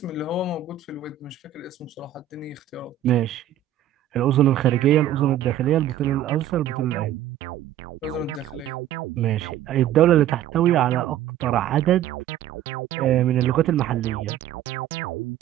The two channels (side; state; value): left; quieter; 11.2 dB